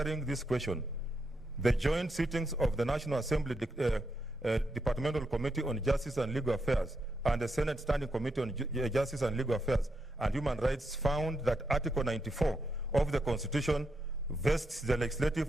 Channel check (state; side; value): normal; both; correlation 0.83